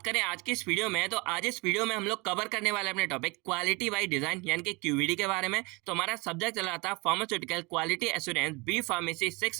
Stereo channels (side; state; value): left; quieter; 26.6 dB